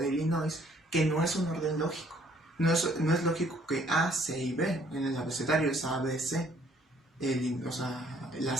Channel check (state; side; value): normal; both; correlation 0.62